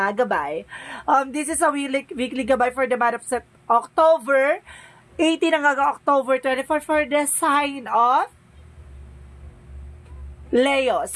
gabay. This is a weekly gabay for the month of October 18 hanggang October 24 for the sign of Leo.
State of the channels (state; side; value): identical; both; correlation 1.00